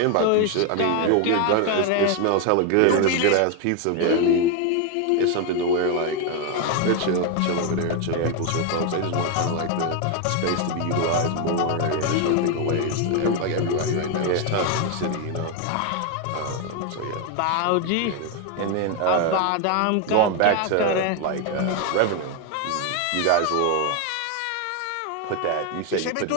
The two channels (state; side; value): different; both; correlation 0.01